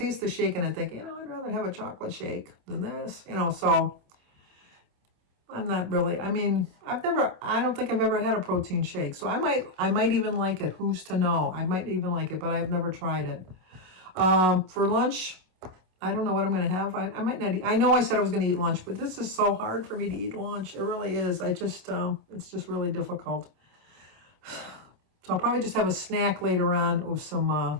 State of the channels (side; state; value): left; late; 27 ms